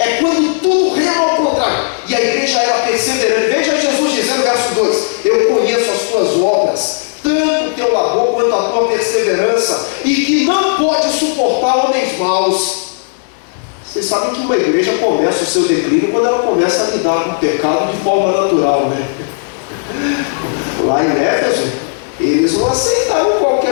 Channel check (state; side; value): silent; right; digital silence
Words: quando tudo rema ao contrário. E a igreja era perseverante. Veja Jesus dizendo, verso 2: eu conheço as tuas obras, tanto o teu labor quanto a tua perseverança, e que não pode suportar homens maus. Vocês sabem que uma igreja começa o seu declínio quando ela começa a lidar com o pecado de forma natural, né? Lá em Éfeso, eles não aceitavam